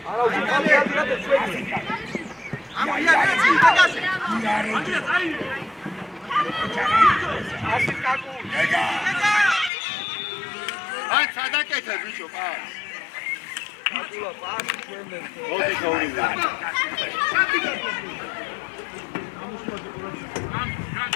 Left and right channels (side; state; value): right; drops out; at 9.7 s